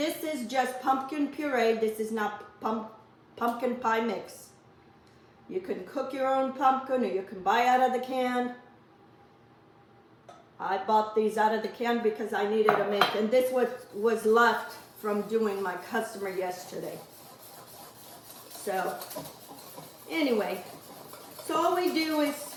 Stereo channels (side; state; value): both; identical; correlation 1.00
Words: is just pumpkin puree. This is not pumpkin pie mix. You can cook your own pumpkin, or you can buy out of the can. I bought these out of the can because I needed to make, and this was left from doing my customer yesterday. So anyway, so all we do is